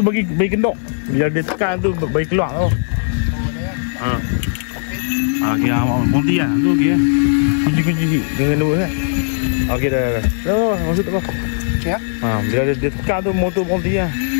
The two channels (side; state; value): right; silent; digital silence